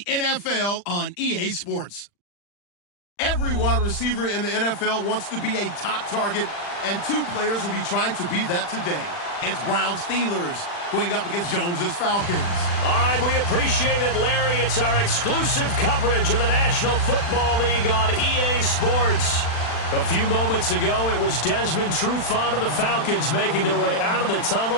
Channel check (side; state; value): right; late; 40 ms